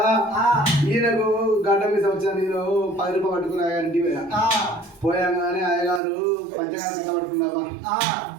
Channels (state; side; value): drops out; left; at 6.0 s